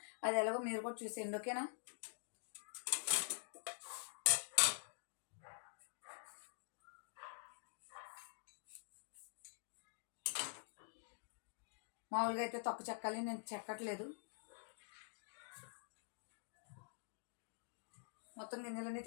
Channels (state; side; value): silent; right; digital silence